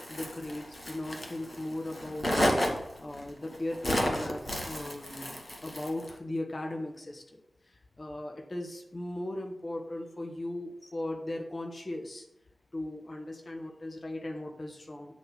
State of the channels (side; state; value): both; normal; correlation 0.95